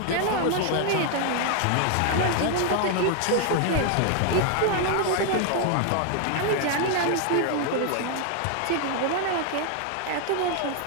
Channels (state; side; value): different; both; correlation 0.00